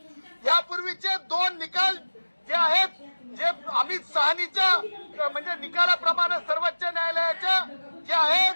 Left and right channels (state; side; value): inverted; both; correlation -1.00